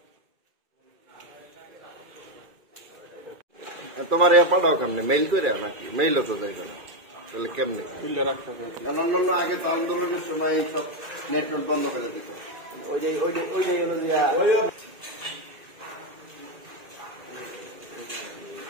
তোমার ইয়া পাঠাও কেমনে? মেইল করে নাকি? মেইলও তো যাইবে না, তাহলে কেমনে? অন্যান্য আগে তো আন্দোলনের সময় সব নেটওয়ার্ক বন্ধ করে দিত। ওইটাই হলো যে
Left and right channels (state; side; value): late; left; 2.4 ms